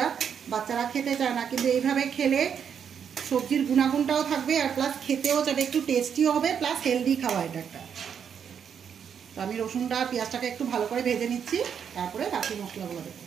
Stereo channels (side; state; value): left; quieter; 7.7 dB